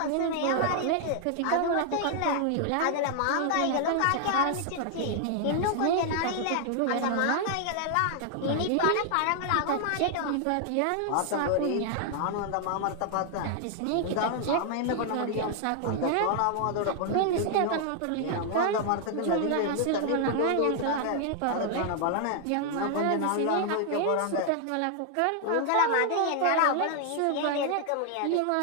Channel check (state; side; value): different; both; correlation 0.00